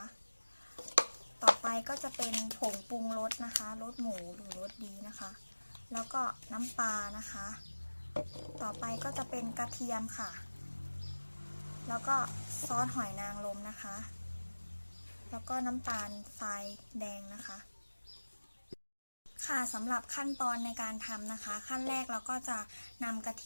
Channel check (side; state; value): both; inverted; correlation -1.00